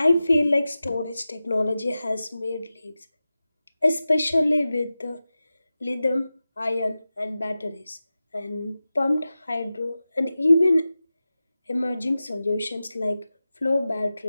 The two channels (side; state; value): both; inverted; correlation -0.94